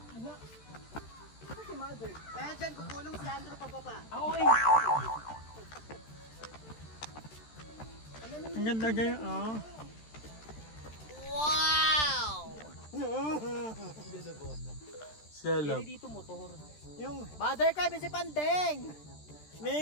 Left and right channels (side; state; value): right; late; 13 ms